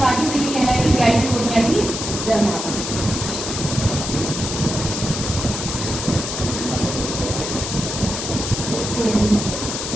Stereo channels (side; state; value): left; noise; hiss, 5 dB below the sound